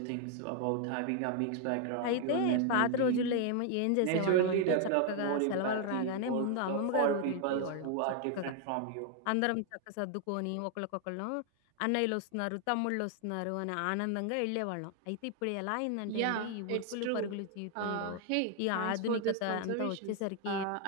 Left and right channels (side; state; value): both; different; correlation 0.00